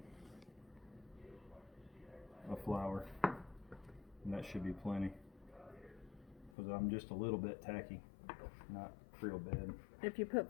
of flour. And that should be plenty. Because I'm just a little bit tacky. Not real bad. If you put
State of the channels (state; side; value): drops out; right; at 6.6 s